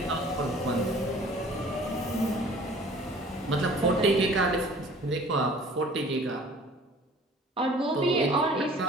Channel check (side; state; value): both; normal; correlation 0.50